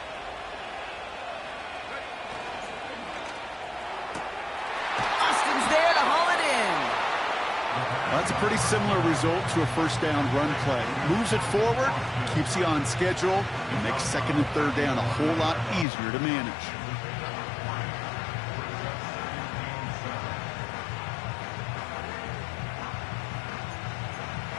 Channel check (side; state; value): right; drops out; at 15.9 s